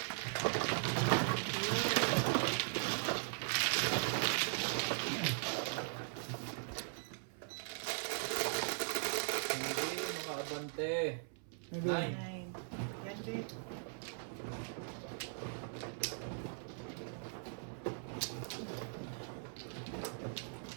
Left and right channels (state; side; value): silent; left; 51 dB below the other